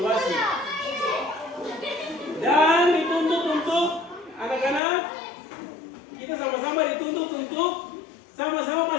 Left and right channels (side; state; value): right; drops out; at 4.8 s